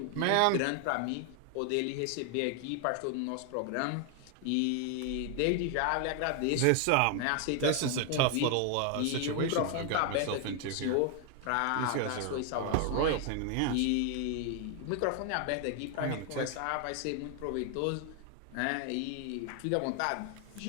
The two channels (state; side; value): different; both; correlation 0.00